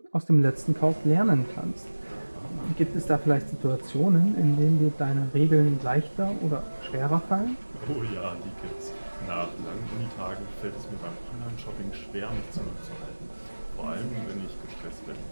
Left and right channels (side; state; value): both; inverted; correlation -1.00